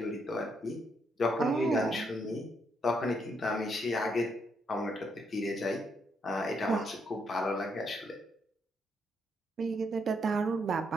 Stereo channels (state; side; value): normal; both; correlation 0.76